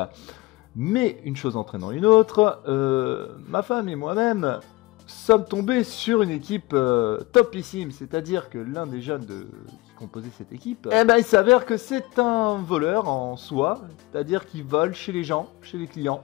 Mais une chose entraînant une autre, ma femme et moi-même sommes tombés sur une équipe topissime, c'est-à-dire que l'un des jeunes qui composait cette équipe, il s'avère que c'est un voleur en soi, c'est-à-dire qu'il vole chez les gens, chez les clients.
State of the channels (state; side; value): quieter; right; 21.0 dB